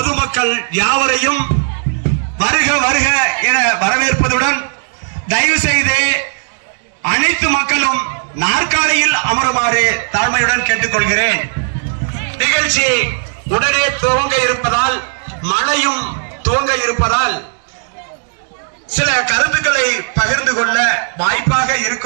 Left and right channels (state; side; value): silent; left; digital silence